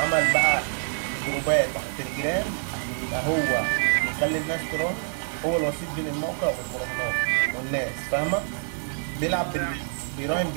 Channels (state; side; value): silent; left; 61 dB below the other